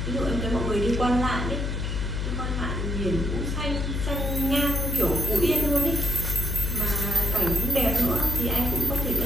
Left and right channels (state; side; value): noise; left; hum, 1 dB below the sound